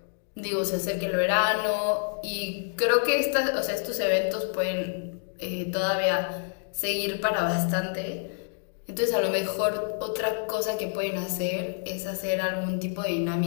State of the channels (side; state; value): right; silent; digital silence